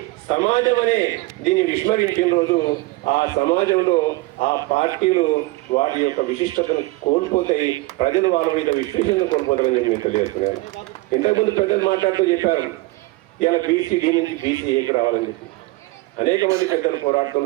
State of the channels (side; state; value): left; quieter; 21.3 dB